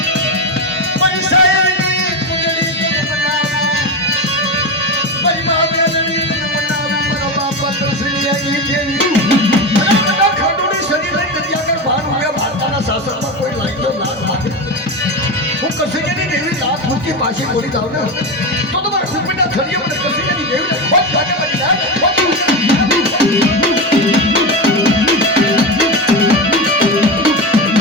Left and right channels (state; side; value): normal; both; correlation 0.18